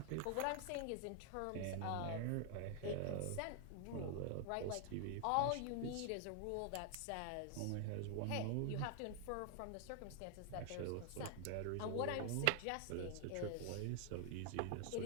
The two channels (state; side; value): different; both; correlation 0.00